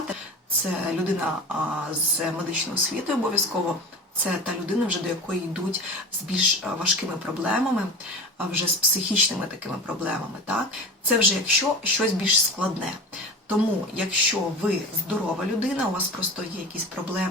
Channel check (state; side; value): normal; both; correlation 0.32